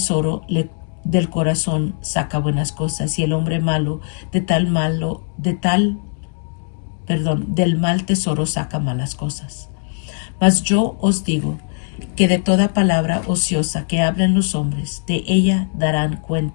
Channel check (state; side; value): silent; right; 61 dB below the other